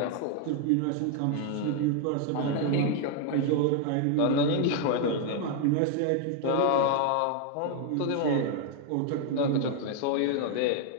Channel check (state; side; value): different; both; correlation 0.00